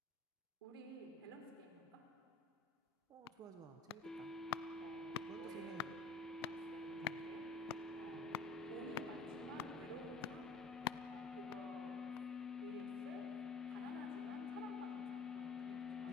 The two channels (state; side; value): quieter; right; 3.8 dB